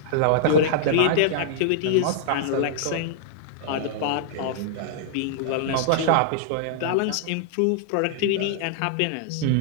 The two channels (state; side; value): different; both; correlation -0.01